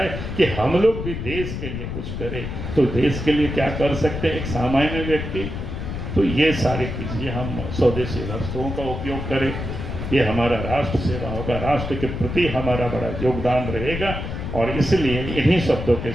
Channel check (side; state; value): left; noise; rumble, 5 dB below the sound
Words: कि हम लोग भी देश के लिए कुछ करें। तो देश के लिए क्या कर सकते हैं एक सामान्य व्यक्ति? तो ये सारी चीज़ें हम स्वदेशी वस्तुओं का उपयोग करें, ये हमारा राष्ट्र सेवा होगा, राष्ट्र के प्रति हमारा बड़ा योगदान रहेगा। और इसलिए इन्हीं शब्दों के